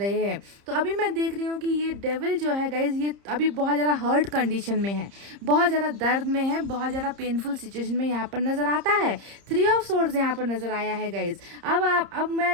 हैं। तो अभी मैं देख रही हूँ कि ये डेविल जो है गाइज, ये अभी बहुत ज़्यादा हर्ट कंडीशन सिचुएशन में है, बहुत ज़्यादा दर्द में है, बहुत ज़्यादा पेनफुल सिचुएशन में यहाँ पर नज़र आता है। 3 ऑफ सोर्ड्स यहाँ पर नज़र आया है गाइज। अब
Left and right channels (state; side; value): late; left; 30 ms